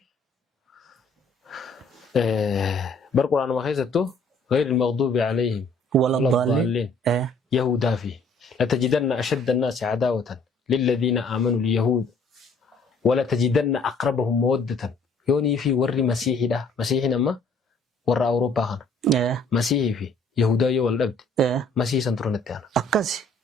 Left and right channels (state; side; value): quieter; right; 3.2 dB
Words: بالقرآن ما خيزتو غير المغضوب عليهم ولا الضالين يهودا فيه لتجدن أشد الناس عداوة للذين آمنوا اليهود ولا تجدن أقربهم مودة يوني في ور مسيحي ده مسيحي نما ور أوروبا خان مسيحي فيه يهودا يولد مسيح سنترونت أنا أكاسي